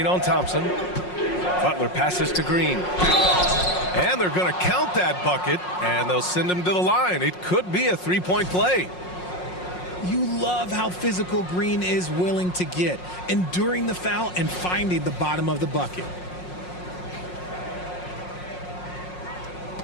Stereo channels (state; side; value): late; right; 5.5 ms